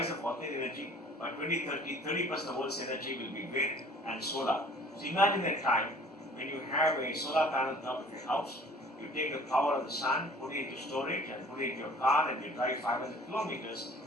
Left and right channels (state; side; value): normal; both; correlation 0.51